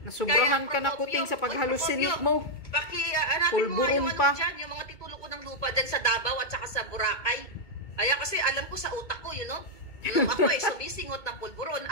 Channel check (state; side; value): late; right; 2.2 ms